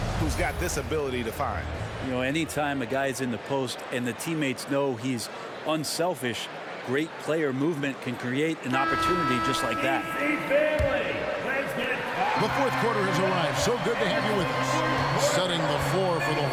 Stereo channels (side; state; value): both; identical; correlation 1.00